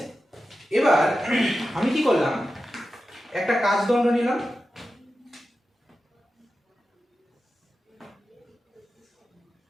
এবার আমি কি করলাম, একটা কাচদণ্ড নিলাম,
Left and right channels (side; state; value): both; normal; correlation 0.92